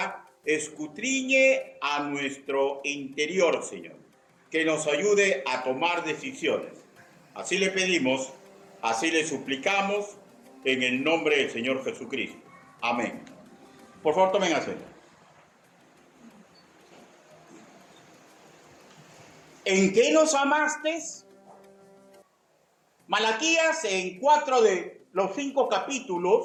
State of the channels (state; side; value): identical; both; correlation 1.00